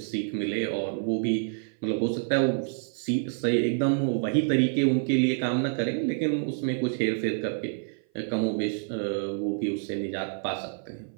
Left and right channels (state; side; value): silent; left; 56 dB below the other